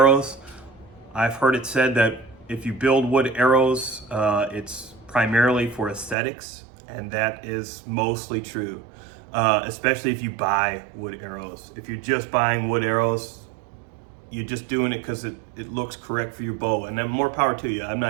I've heard it said that if you build wood arrows, it's primarily for aesthetics, and that is mostly true, especially if you buy wood arrows. If you're just buying wood arrows, you're just doing it because it looks correct for your bow, and then more power to you. I'm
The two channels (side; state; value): left; drops out; at 6.2 s